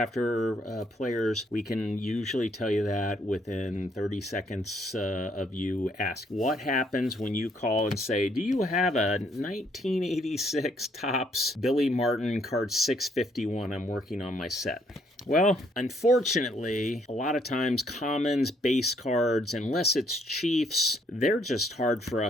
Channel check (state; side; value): normal; both; correlation 0.69